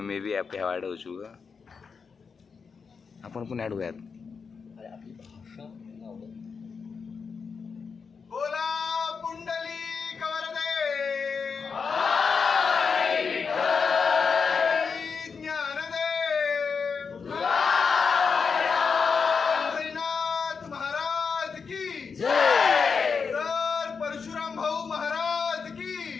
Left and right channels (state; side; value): quieter; right; 5.5 dB